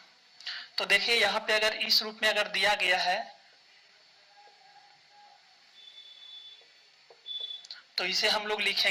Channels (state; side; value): identical; both; correlation 1.00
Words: तो देखिए यहाँ पे अगर इस रूप में अगर दिया गया है तो इसे हम लोग